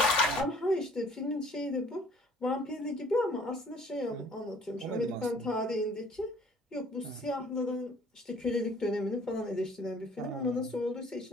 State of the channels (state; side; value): normal; both; correlation 0.55